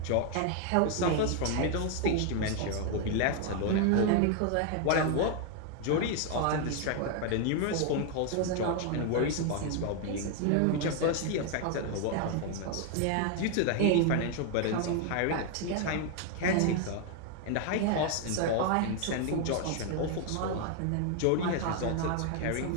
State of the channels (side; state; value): both; different; correlation 0.00